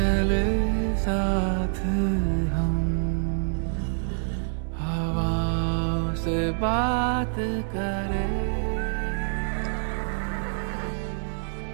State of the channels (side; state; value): left; silent; 61 dB below the other